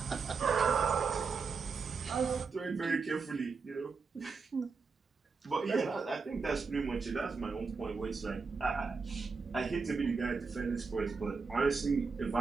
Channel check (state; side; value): quieter; left; 4.8 dB